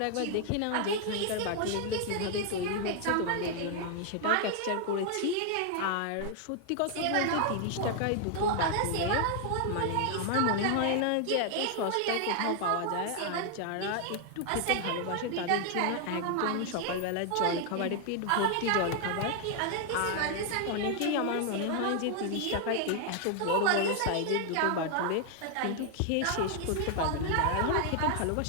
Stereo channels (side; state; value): both; different; correlation 0.00